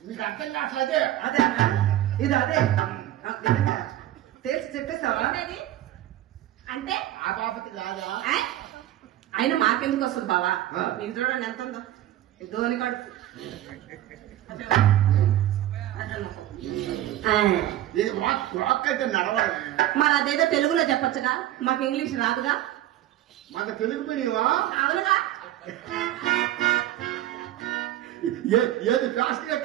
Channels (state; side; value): quieter; left; 13.6 dB